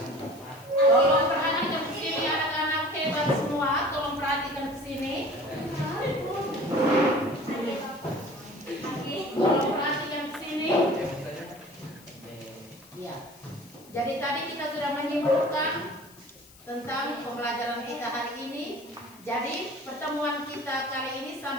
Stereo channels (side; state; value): left; noise; hiss, 23 dB below the sound